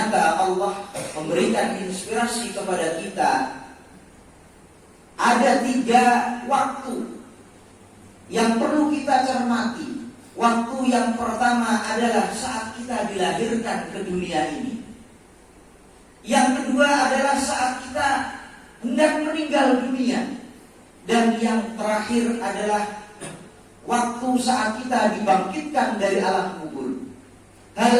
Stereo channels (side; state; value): both; identical; correlation 1.00